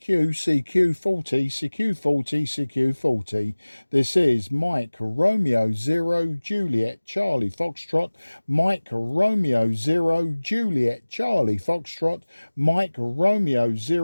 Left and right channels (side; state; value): both; inverted; correlation -1.00